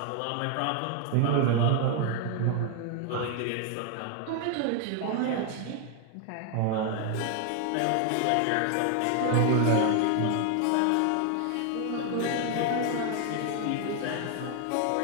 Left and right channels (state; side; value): different; both; correlation 0.00